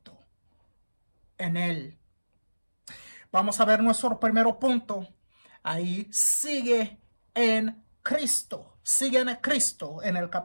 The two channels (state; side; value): inverted; both; correlation -1.00